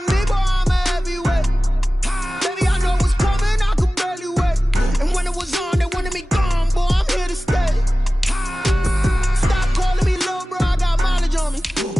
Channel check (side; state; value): both; normal; correlation 0.96